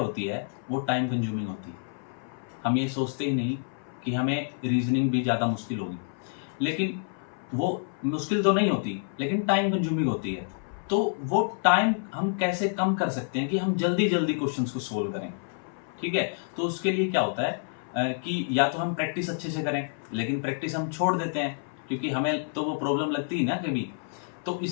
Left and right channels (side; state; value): right; silent; 59 dB below the other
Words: है, वो टाइम कंज्यूमिंग होती है। हम ये सोचते ही नहीं कि हमें रीजनिंग भी ज़्यादा मुश्किल होगी, लेकिन वो मुश्किल तो नहीं होती, लेकिन टाइम कंज्यूमिंग होती है। तो वो टाइम हम कैसे कम कर सकते हैं कि हम जल्दी जल्दी क्वेश्चंस को सोल्व करें, ठीक है? तो उसके लिए क्या होता है कि या तो हम प्रैक्टिस अच्छे से करें, लेकिन प्रैक्टिस हम छोड़ देते हैं क्योंकि हमें तो वो प्रॉब्लम लगती है ना कभी। तो